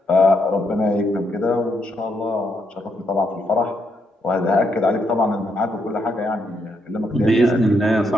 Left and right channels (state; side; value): normal; both; correlation 0.78